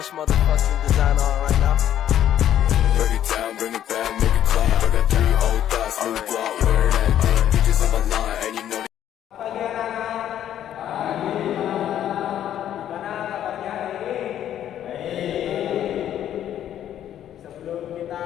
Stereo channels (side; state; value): right; quieter; 10.9 dB